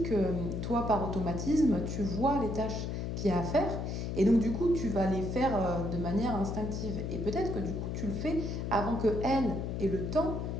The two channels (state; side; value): noise; left; hum, 3 dB below the sound